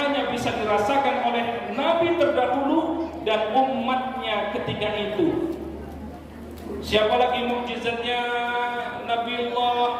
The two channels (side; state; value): both; identical; correlation 1.00